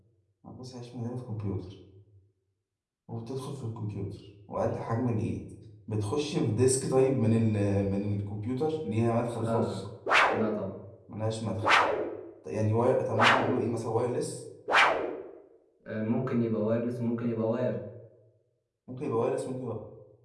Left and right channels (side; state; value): both; identical; correlation 1.00